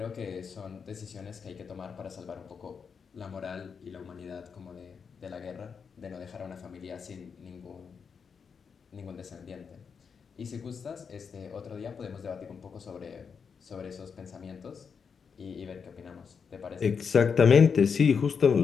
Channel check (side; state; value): right; quieter; 6.1 dB